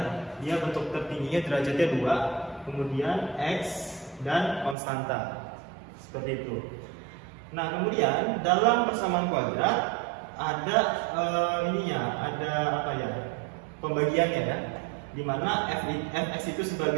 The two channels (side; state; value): left; drops out; at 4.8 s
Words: Dia bentuk tertingginya derajatnya 2, kemudian x dan konstanta. Seperti itu. Nah, kemudian dalam persamaan kuadrat ada pembagiannya, ya. Di mana fx itu